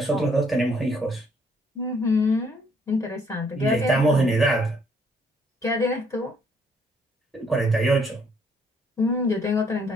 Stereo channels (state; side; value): normal; both; correlation 0.67